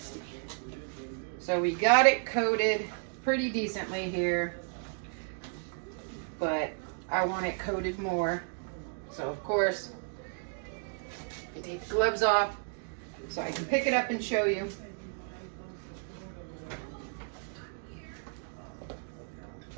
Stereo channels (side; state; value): left; silent; 56 dB below the other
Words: So we got it coated pretty decently here, but I want it coated more. So of course, I take the gloves off so I can pick it up and show you.